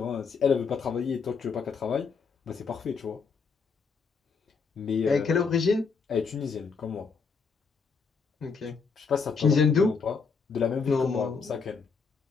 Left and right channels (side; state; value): right; quieter; 5.3 dB